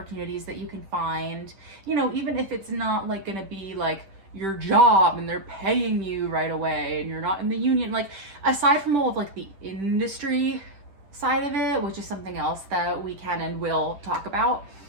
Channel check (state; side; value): late; left; 10 ms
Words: that you can find, even if it's not like gonna be like your job and they're paying you right away and you're not in the union. Like, aside from all of like the industry side of it, which is something else that we can and will talk about,